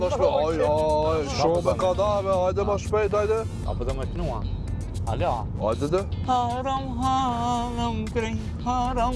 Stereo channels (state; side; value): identical; both; correlation 1.00